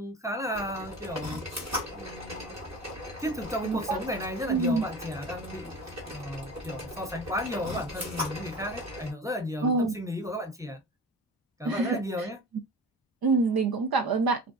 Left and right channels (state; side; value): normal; both; correlation 0.35